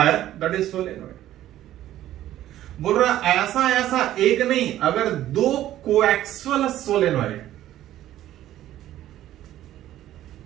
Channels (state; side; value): quieter; left; 13.2 dB